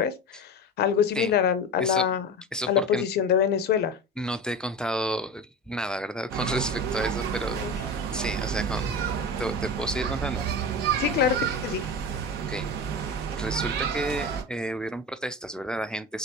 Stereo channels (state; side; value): normal; both; correlation 0.28